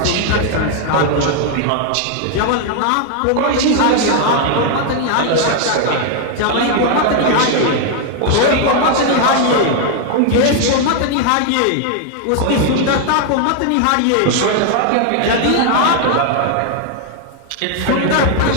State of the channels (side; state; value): both; different; correlation 0.00